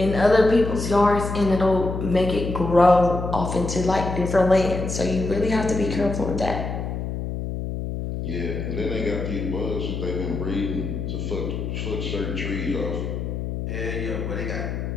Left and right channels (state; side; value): noise; left; hum, 4 dB below the sound